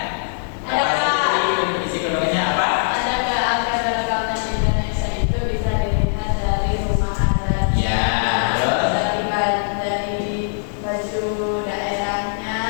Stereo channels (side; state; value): right; silent; digital silence